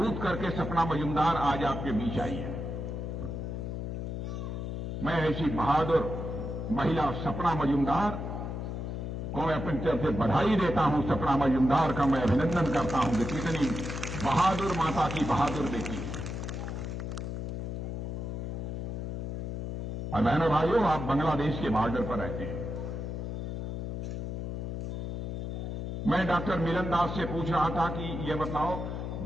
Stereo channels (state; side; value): noise; left; hum, 4 dB below the sound